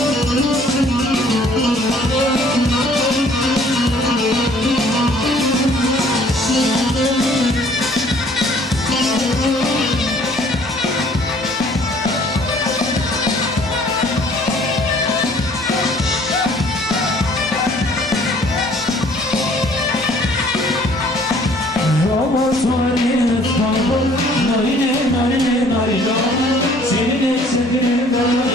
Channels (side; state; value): both; normal; correlation 0.57